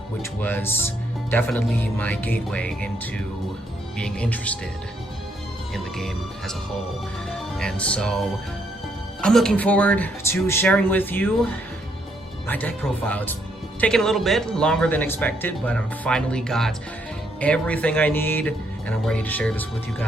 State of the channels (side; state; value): both; normal; correlation 0.73